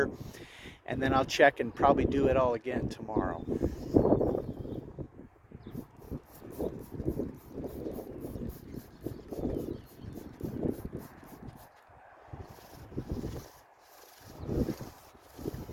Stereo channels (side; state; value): both; identical; correlation 1.00